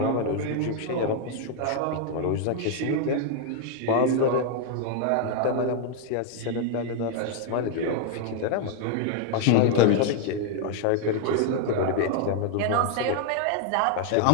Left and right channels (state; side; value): different; both; correlation 0.00